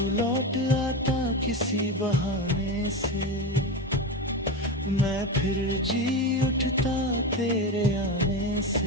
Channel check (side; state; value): both; normal; correlation 0.19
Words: लौट आता किसी बहाने से, मैं फिर जी उठता तेरे आने